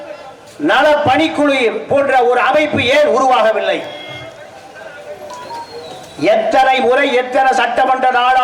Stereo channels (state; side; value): identical; both; correlation 1.00